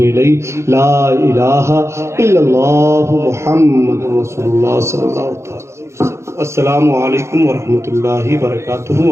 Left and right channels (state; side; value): late; left; 0.13 ms